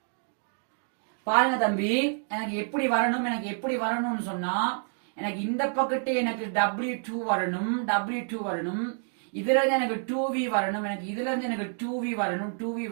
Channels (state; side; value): silent; left; 59 dB below the other